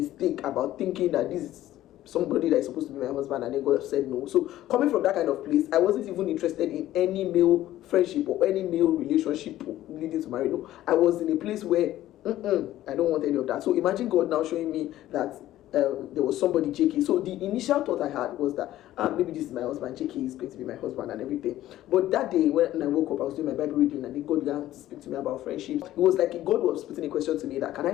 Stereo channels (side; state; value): right; quieter; 14.1 dB